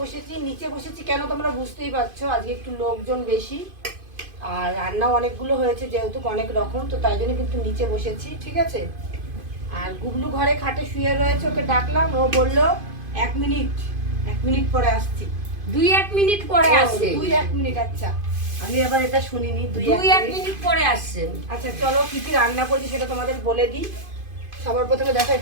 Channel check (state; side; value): late; left; 2.5 ms